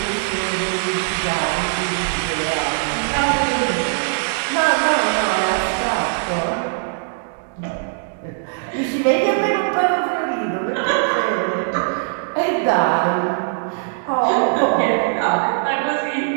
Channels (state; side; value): silent; left; digital silence